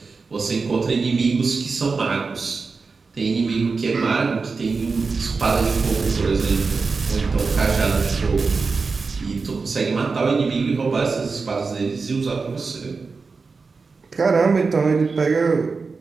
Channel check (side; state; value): left; quieter; 4.5 dB